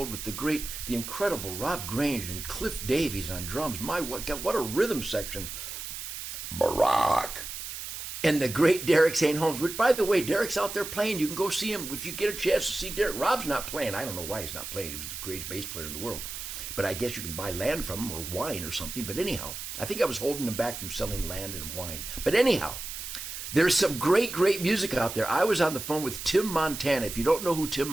with the incredible Rob Grange and Cliff Davies on drums. What a rhythm section. Barack. And the great Derek St. Holmes, which, by the way, Derek's out there playing. You can go see him if you get a chance to see Derek. Rob's not playing. I don't know why he's not playing. He was the greatest bass player in the world. But I guess you can buy land from him or wine or something. But anyhow, I think I was holding him back from selling land and wine. But anyhow, there's some great, great music out there. I was on the phone with Tim Montana. If you don't know who Tim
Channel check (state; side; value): noise; right; hiss, 8 dB below the sound